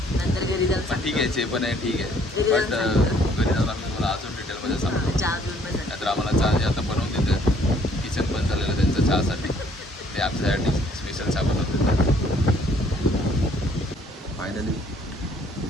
नंतर घरी जाऊन ठीक आहे. जे पण आहे ठीक आहे. बट घरी जाऊन आम्ही तुम्हाला अजून डिटेलमध्ये सांगतो. चहा घेऊन पण नाहीतर आम्हाला चहा जे आता बनवून देतात किचन बंद झालेलं त्यांचं चहासाठी ते आमच्यासाठी स्पेशल चहा बनवून देतात.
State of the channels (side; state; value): both; normal; correlation 0.62